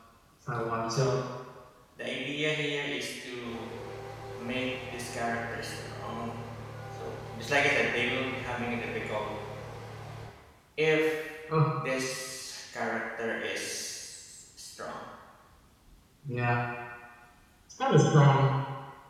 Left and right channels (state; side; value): identical; both; correlation 1.00